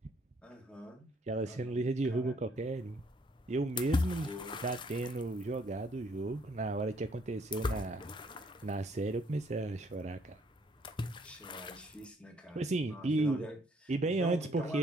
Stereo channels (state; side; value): normal; both; correlation 0.65